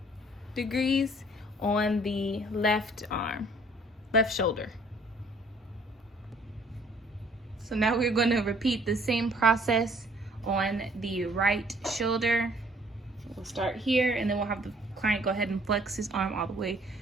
degrees on the left arm, left shoulder. So now we're going to repeat the same process on the right shoulder. We'll start here, and then we'll have the client go ahead and flex his arm all the way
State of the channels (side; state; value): both; normal; correlation 0.58